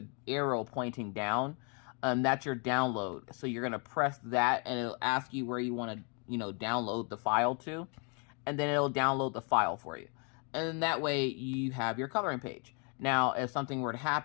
arrow pointing down, and that's your download. So you're going to press that, and it'll ask you where you want to, download the file to. and then it'll download the file for you. And then that way you have your coloring page. Now, if something were to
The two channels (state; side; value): quieter; right; 36.0 dB